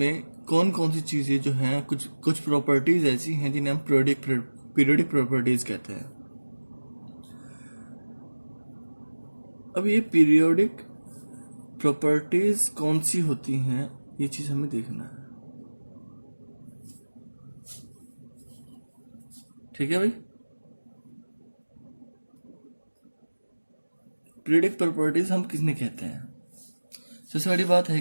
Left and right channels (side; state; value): both; inverted; correlation -1.00